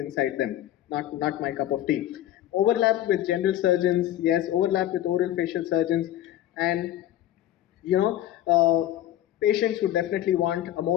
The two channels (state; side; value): quieter; right; 12.8 dB